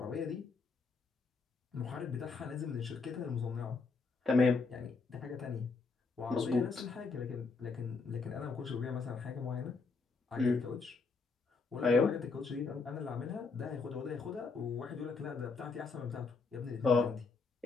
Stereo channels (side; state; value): right; quieter; 4.4 dB